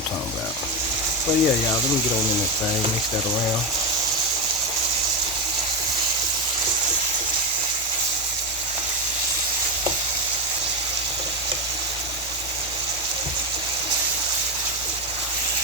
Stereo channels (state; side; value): normal; both; correlation 0.12